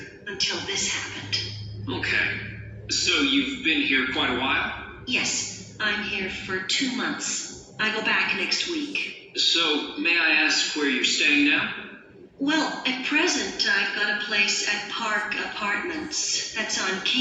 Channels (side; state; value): both; identical; correlation 1.00